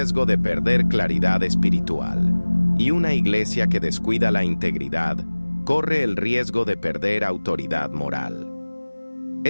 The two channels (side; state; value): both; inverted; correlation -1.00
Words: de perder claridad espiritual, y una iglesia que descuida la integridad corre el riesgo de perder autoridad moral.